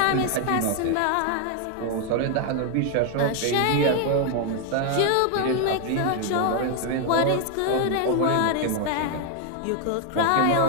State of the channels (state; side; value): different; both; correlation 0.00